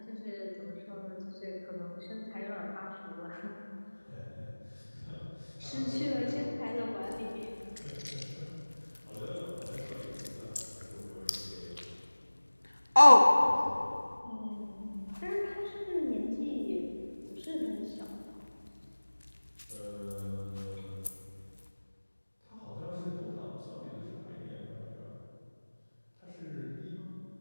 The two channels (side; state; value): both; inverted; correlation -1.00